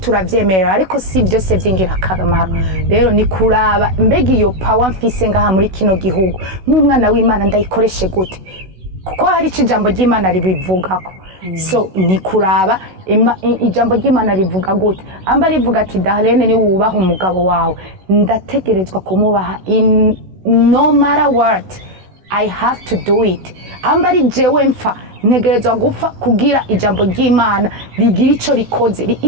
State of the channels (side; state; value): left; late; 16 ms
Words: ariko si vyose vy'ingirakamaro. Rero ni kuraba mbega iyo power mfise ngaha muri kino gihugu nk'umwana w'Imana ndayikoreshe gute, kuko hari ijambo ry'Imana ribivugako. So ni kuraba ijambo ry'Imana rivuga gute, amba rivuga ati Darlene ni wubaha umugabo wawe, ndategerezwa kumubaha no matter what, I have to do it. Amba ari jewe mfa ntegerezwa gupfa kugira ijambo ry'Imana rigira ico rikoze.